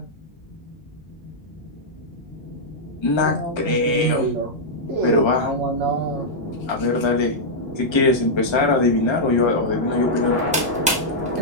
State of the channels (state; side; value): normal; both; correlation -0.07